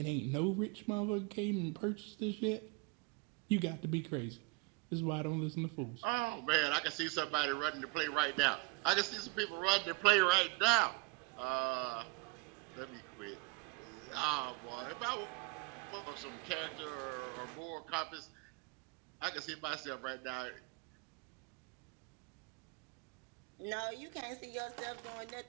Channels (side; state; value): left; quieter; 29.2 dB